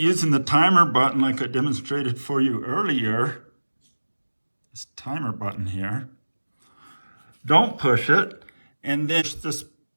the timer button like I demonstrated for you earlier, this timer button here, don't push it, and then push this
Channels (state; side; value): inverted; both; correlation -1.00